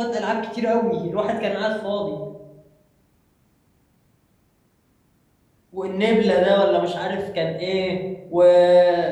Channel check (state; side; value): identical; both; correlation 1.00